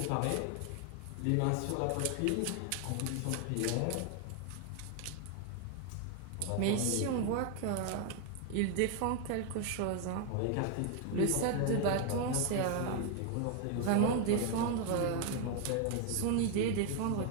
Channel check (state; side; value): different; both; correlation 0.00